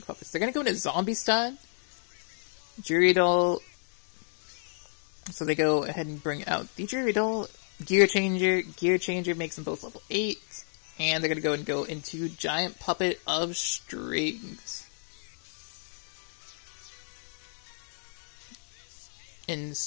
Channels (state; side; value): silent; right; digital silence